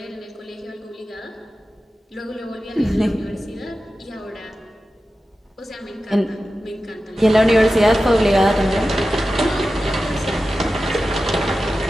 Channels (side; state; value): both; normal; correlation 0.93